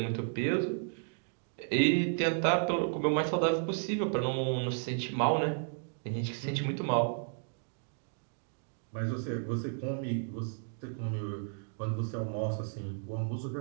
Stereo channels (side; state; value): left; silent; digital silence